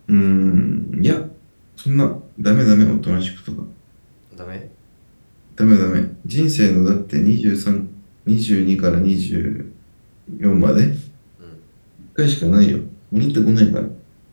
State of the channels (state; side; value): inverted; both; correlation -1.00